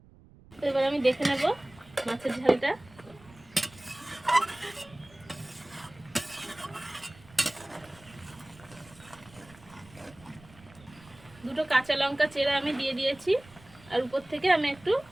তো এবার আমি দেখে নেব মাছের ঝালটা। দুটো কাঁচা লঙ্কা চেরা আমি দিয়ে দিয়েছি, আর উপর থেকে আমি একটু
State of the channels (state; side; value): noise; right; rumble, 24 dB below the sound